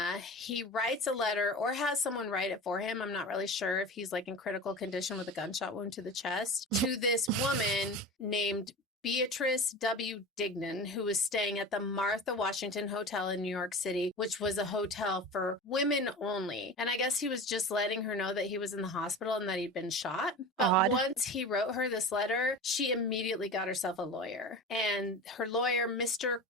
he writes a letter or has someone write it for him. I'm not really sure if he's like in critical condition with a gunshot wound to the chest, to this woman named Beatrice W. Dignan, who was staying at the Martha Washington Hotel in New York City, which was a hotel for women only. And I guess he was just letting her know that he was in the hospital and that he'd been shot. But once he wrote her this letter, she immediately got herself a lawyer. And her lawyer, Mr.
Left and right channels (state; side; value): normal; both; correlation 0.31